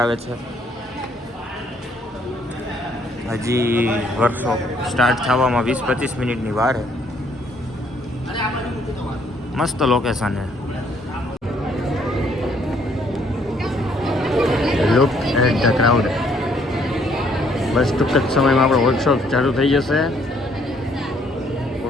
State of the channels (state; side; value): normal; both; correlation 0.66